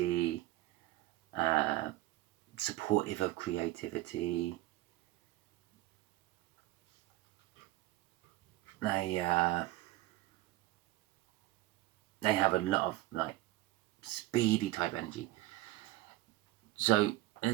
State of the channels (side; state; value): left; quieter; 17.0 dB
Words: supportive of creativity. They have a lot of like speedy type energy. So,